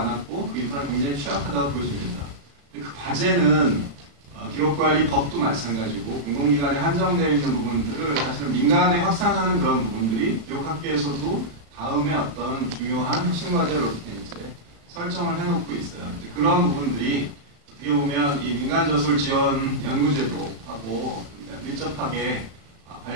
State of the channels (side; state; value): left; late; 35 ms